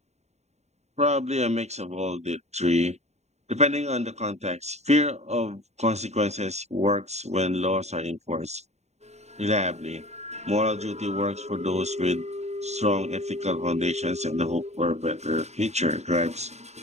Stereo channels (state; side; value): late; left; 0.32 ms